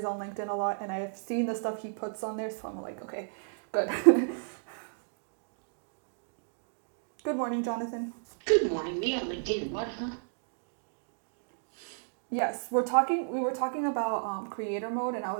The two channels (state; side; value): silent; left; digital silence